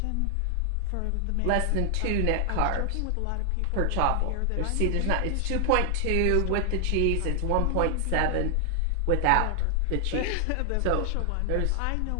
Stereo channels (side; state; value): both; different; correlation 0.00